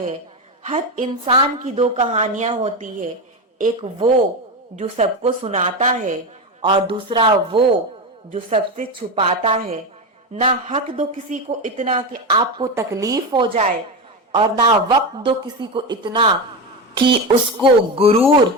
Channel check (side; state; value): both; normal; correlation 0.17